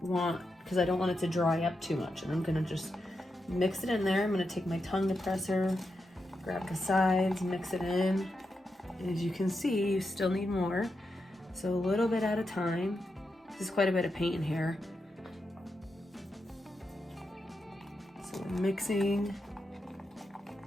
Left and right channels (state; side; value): normal; both; correlation 0.86